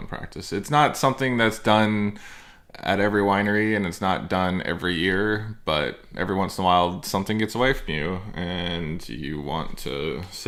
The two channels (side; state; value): both; identical; correlation 1.00